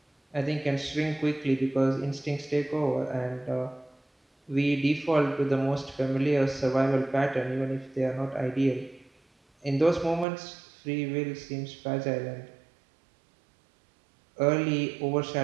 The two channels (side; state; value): left; drops out; at 10.2 s